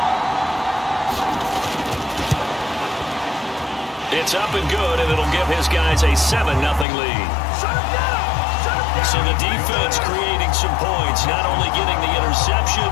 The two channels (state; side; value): drops out; right; at 6.9 s